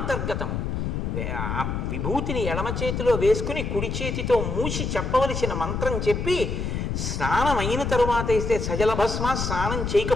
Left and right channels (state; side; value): noise; left; rumble, 2 dB below the sound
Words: ఆ విభూతిని ఎడమ చేతిలో వేసుకుని కుడి చేతితో మూసి చెప్పవలసిన మంత్రం చెప్పి స్నానం అయిన తరువాత ఇస్తే సజల భస్మ, స్నానం